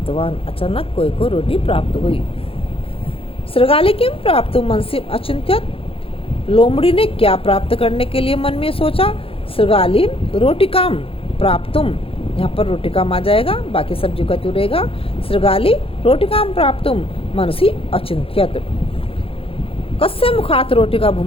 अचानक कोए को रोटी प्राप्त हुई। श्रगाली किम प्राप्त मनसि अचिंत्यत। लोमड़ी ने क्या प्राप्त करने के लिए मन में सोचा? श्रगाली रोटिकाम प्राप्तुम। यहाँ पर रोटिकाम आ जाएगा, बाकी सब्जी का रहेगा। श्रगाली रोटिकाम प्राप्तुम मनसि अचिंत्यत। कस्य मुखात रोटी का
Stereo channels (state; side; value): late; right; 0.27 ms